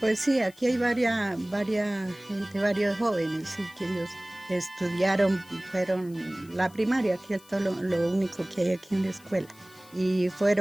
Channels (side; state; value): left; noise; hiss, 25 dB below the sound